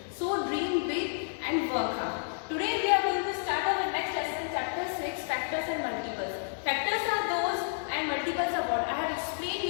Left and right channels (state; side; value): silent; right; digital silence